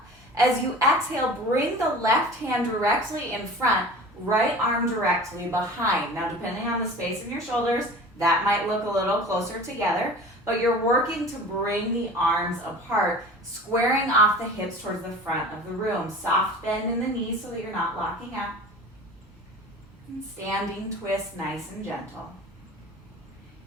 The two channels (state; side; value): normal; both; correlation 0.40